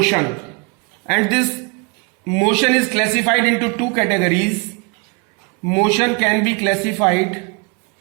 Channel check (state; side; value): quieter; left; 31.4 dB